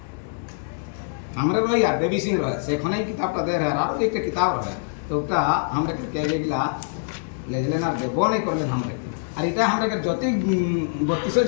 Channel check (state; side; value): silent; right; digital silence